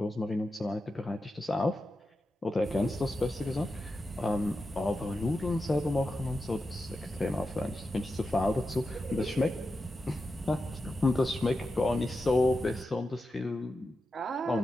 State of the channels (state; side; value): normal; both; correlation 0.90